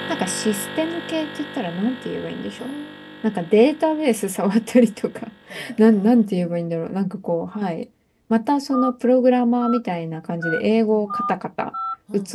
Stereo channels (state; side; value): identical; both; correlation 1.00